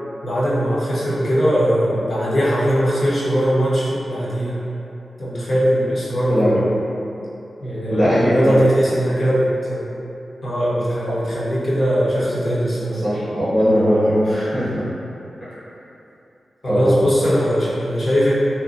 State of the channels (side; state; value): both; normal; correlation 0.94